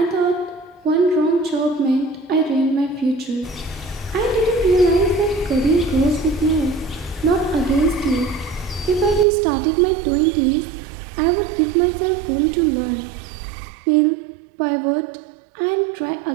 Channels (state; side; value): drops out; left; at 9.2 s